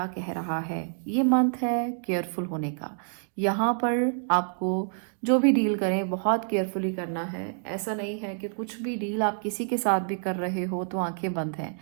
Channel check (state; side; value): silent; left; digital silence